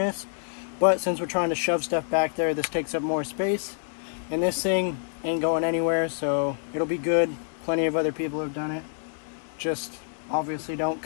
but since we're trying to shove stuff back there, this takes up more space, and this thing ain't going anywhere, so it'll be good. Plenty of other people have done it. Just obviously don't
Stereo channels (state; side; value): silent; right; digital silence